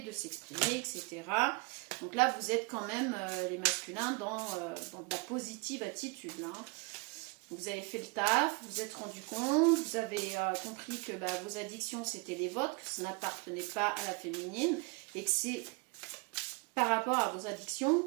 de s'exprimer, etc. Donc là, vous êtes quand même, les masculins, dans de la positive attitude. Là. Vous avez fait le taf, vous vous êtes rendu compte, vous avez compris que vos addictions, c'était les vôtres, que ça n'appartenait pas à la féminine, et que c'est par rapport à vos addictions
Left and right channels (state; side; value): quieter; left; 29.6 dB